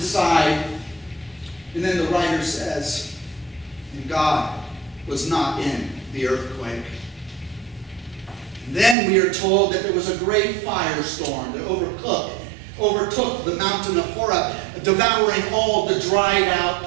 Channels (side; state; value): left; drops out; at 9.0 s